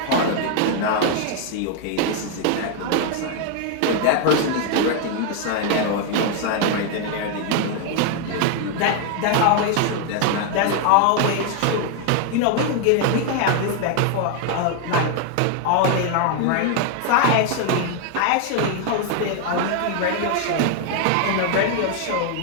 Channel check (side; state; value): both; different; correlation 0.00